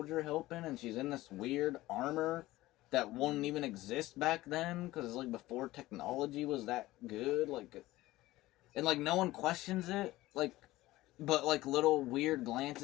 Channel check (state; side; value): quieter; right; 17.4 dB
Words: helping, and she's in this weird armor that wouldn't even exist back then, because it's, like, before technology was that good. Like, and, like, no one questions it. Like, but, like, little weird